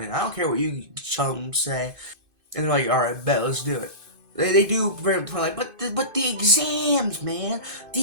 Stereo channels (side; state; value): left; late; 2.5 ms